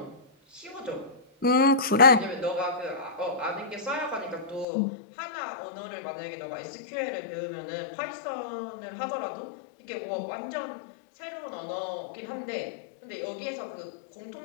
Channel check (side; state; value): right; drops out; at 4.7 s